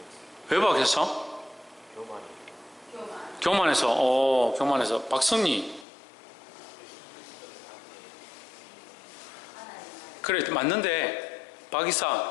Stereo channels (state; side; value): drops out; right; at 5.9 s